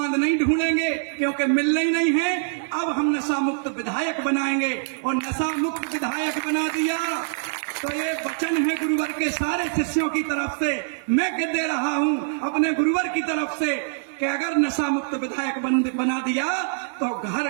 नहीं ढूंढेंगे, क्योंकि मिलना ही नहीं है। अब हम नशा मुक्त विधायक बनाएंगे और नशा मुक्त विधायक बना दिया तो ये वचन है गुरुवर के सारे शिष्यों की तरफ से, मैं कह दे रहा हूं अपने गुरुवर की तरफ से कि अगर नशा मुक्त विधायक बना दिया तो घर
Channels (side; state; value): left; silent; digital silence